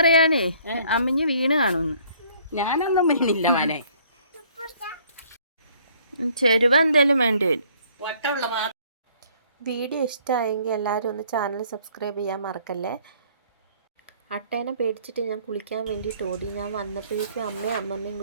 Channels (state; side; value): inverted; both; correlation -0.59